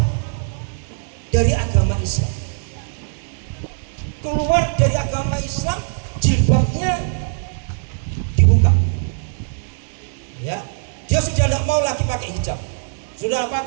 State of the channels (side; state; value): left; silent; 65 dB below the other